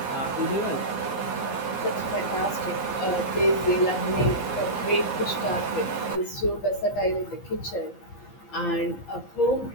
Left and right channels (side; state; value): right; late; 15 ms